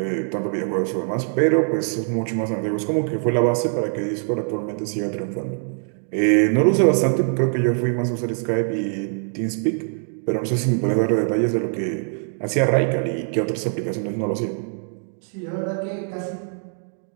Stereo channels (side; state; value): left; silent; 55 dB below the other